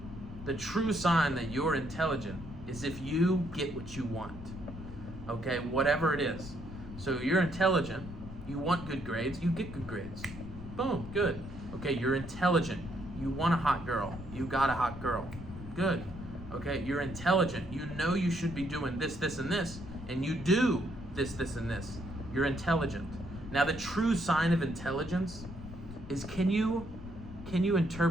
the true sign that you're intelligent is if you get what you want. Okay, whatever it is. So you're intelligent, you want good grades, you get good grades. Boom, good. Okay, you're intelligent, you want a hot girl, you got a hot girl. Good. Okay, you're intelligent, you know you should be doing this, this, and this, and you do this, this, and this. You're intelligent. Now the true sign of intelligence is can you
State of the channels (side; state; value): left; noise; rumble, 13 dB below the sound